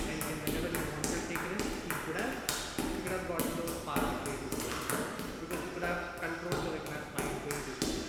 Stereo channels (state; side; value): identical; both; correlation 1.00